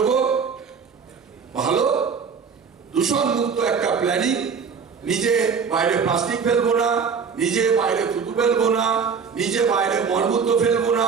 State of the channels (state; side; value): quieter; left; 6.0 dB